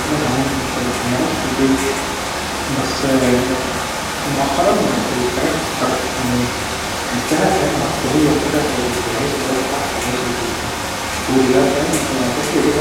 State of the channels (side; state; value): both; identical; correlation 1.00